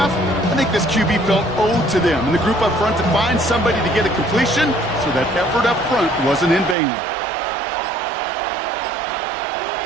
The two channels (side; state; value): left; drops out; at 6.8 s